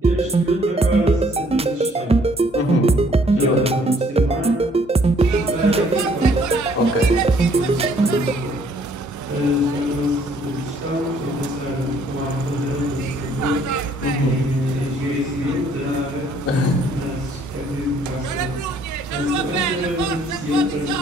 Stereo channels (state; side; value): normal; both; correlation 0.63